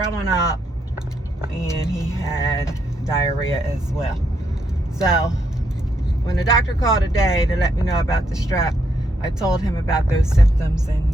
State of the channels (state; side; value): normal; both; correlation 0.77